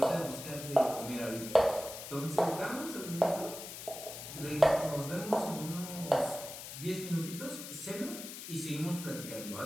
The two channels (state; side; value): noise; left; hiss, 10 dB below the sound